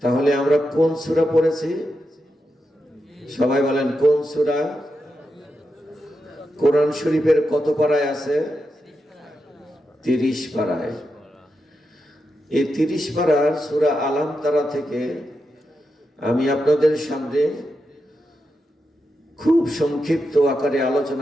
তাহলে আমরা কোন সূরা পড়েছি? সবাই বলেন কোন সূরা? কোরআন শরীফের কত পারায় আছে? 30 পারায়। এই 30 পারার সূরা আলাম তারা থেকে আমি আপনাদের সামনে খুব সংক্ষিপ্ত আকারে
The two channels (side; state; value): both; normal; correlation 0.87